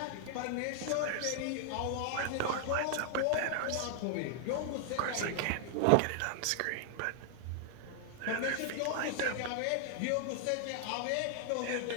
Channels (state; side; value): different; both; correlation 0.00